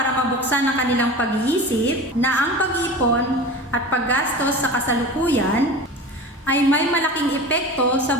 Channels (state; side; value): normal; both; correlation 0.33